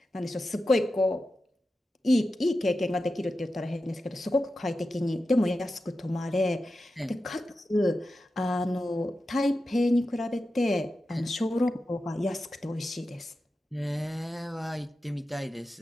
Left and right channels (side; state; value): both; normal; correlation 0.92